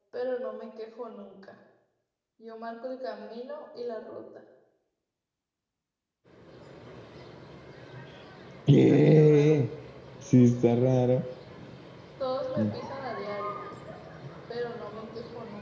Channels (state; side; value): identical; both; correlation 1.00